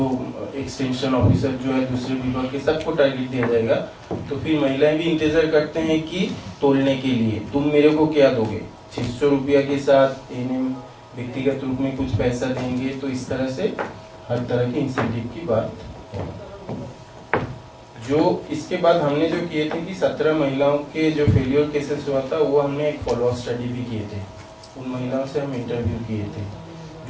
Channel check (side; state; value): both; identical; correlation 1.00